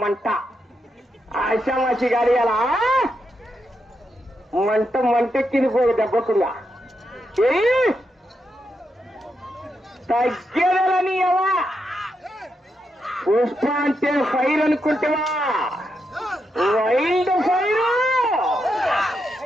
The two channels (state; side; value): normal; both; correlation 0.83